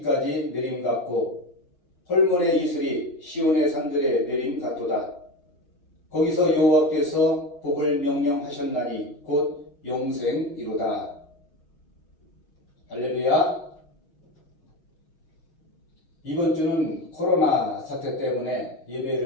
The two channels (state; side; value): late; right; 6.5 ms